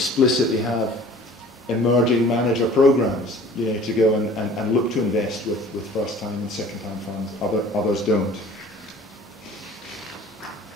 have emerging manager programs, you know, to go and look to invest with first time and second time funds. Others don't.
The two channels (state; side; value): normal; both; correlation 0.48